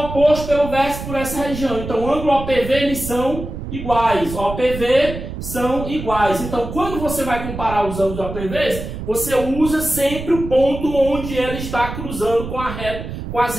pelo vértice por essa região. Então, o ângulo OPV, eles são iguais. OPV são iguais. Então, quando você vai comparar os ângulos OPVs, você usa sempre o ponto onde ela está cruzando com as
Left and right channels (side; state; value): right; noise; rumble, 8 dB below the sound